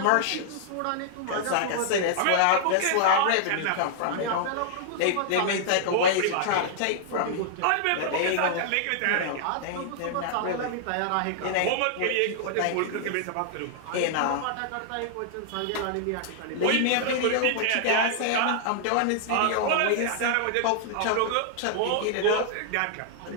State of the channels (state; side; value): different; both; correlation -0.01